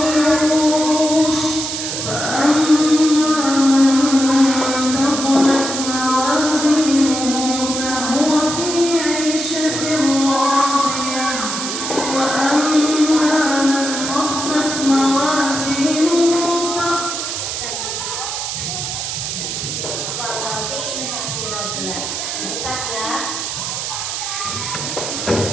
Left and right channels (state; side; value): noise; right; hiss, 4 dB below the sound